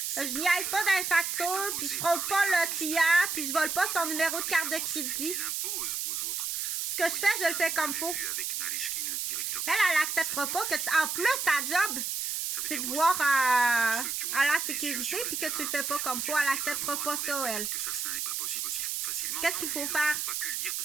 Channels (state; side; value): noise; right; hiss, 2 dB below the sound